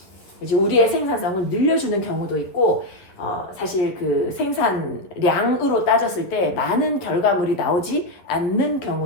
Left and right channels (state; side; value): late; right; 11 ms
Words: 이제 우리의 생산성을 늘려주는 경우도 있고, 사실 그 생산량으로 따졌을 때 많은 결과물이 나오지 않는